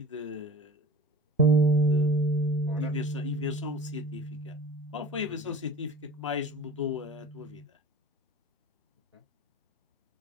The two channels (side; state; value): both; normal; correlation 0.38